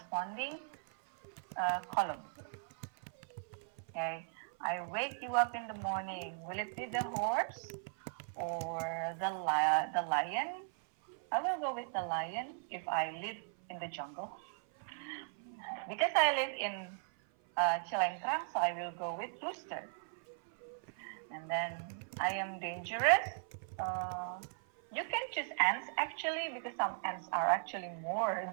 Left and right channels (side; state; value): left; silent; 53 dB below the other